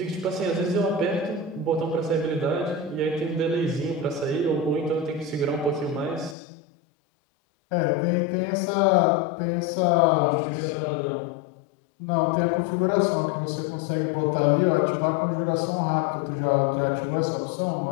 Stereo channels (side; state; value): right; drops out; at 6.4 s